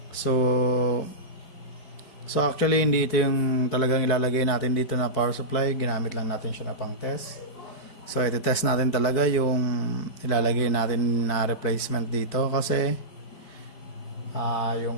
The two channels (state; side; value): late; right; 4.7 ms